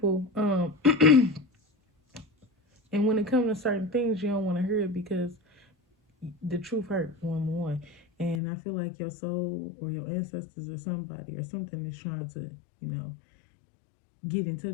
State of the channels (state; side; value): drops out; right; at 8.4 s